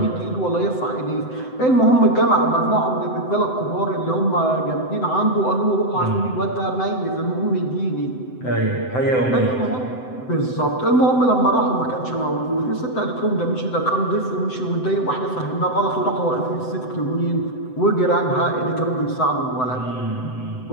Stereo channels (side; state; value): right; late; 7.8 ms